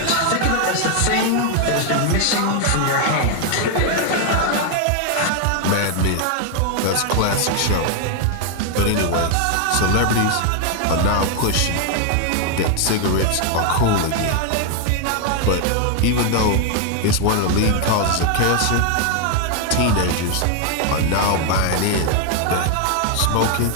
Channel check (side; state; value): both; different; correlation 0.00